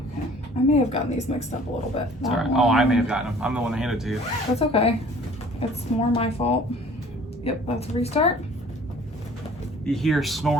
Okay, I may have gotten these mixed up a little bit. It's all right. Oh, I may have gotten them. I'm the one that handed it to you. That's okay. It's more my fault. Yep, that's a restart. You hear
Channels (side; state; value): both; normal; correlation 0.51